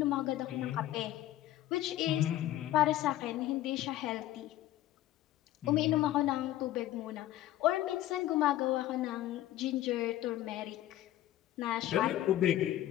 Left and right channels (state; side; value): quieter; right; 13.9 dB